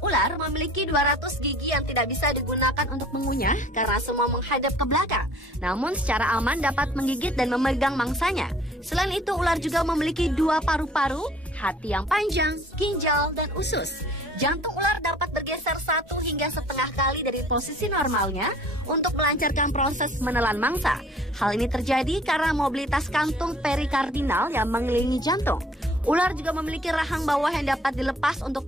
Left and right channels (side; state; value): both; normal; correlation 0.52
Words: Ular memiliki 200 gigi yang tidak bisa digunakan untuk mengunyah karena semua menghadap ke belakang. Namun secara aman dapat menggigit dan memegang mangsanya. Selain itu ular juga memiliki 2 paru-paru, hati yang panjang, ginjal, dan usus. Jantung ular dapat bergeser 1 hingga setengah kali dari posisi normalnya untuk melancarkan proses menelan mangsa. Hal ini terjadi karena mobilitas kantung perikardinal yang mengelilingi jantung. Ular juga memiliki rahang bawah yang dapat dilepas